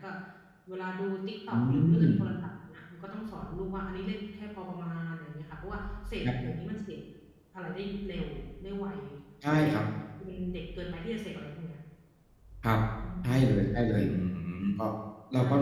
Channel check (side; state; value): both; identical; correlation 1.00